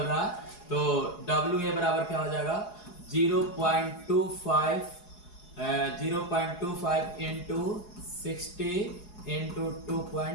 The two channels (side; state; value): right; late; 4.8 ms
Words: रहा है तो WA बराबर क्या हो जाएगा 0.25 इंटू 60 इंटू